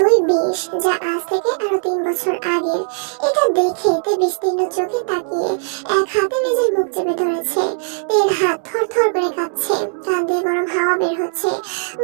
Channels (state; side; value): silent; left; digital silence